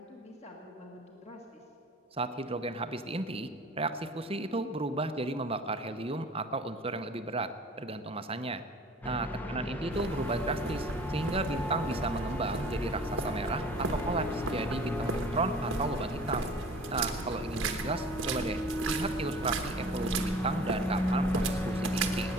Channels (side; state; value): both; normal; correlation 0.45